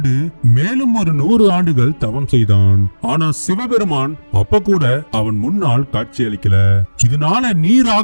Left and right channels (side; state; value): both; inverted; correlation -1.00